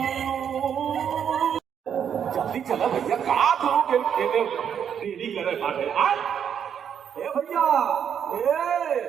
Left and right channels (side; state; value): left; quieter; 8.3 dB